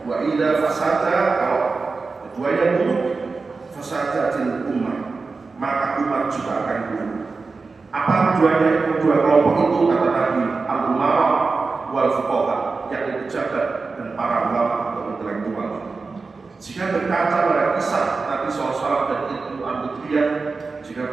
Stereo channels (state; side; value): quieter; left; 4.2 dB